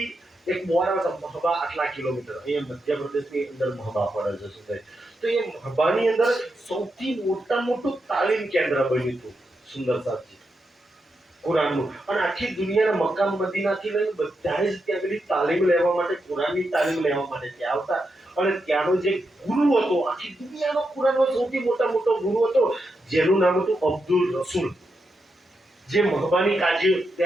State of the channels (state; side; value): normal; both; correlation 0.85